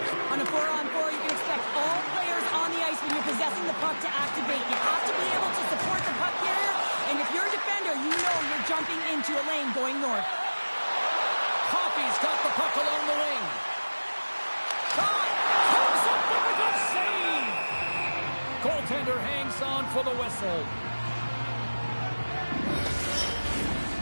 On a 4-on-4, you can expect all players on the ice when you're possessing the puck to activate. You have to be able to support the puck carrier, and if you're a defender, you know you're jumping into a lane going north. Coffey's got the puck along the wing. Shot! Comes up with a good save! Goaltender hangs on for the whistle.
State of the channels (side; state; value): both; inverted; correlation -1.00